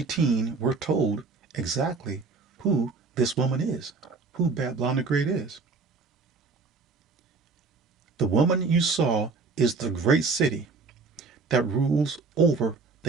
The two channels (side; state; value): left; quieter; 4.3 dB